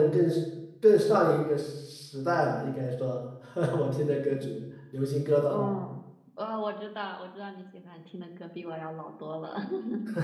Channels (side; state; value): both; identical; correlation 1.00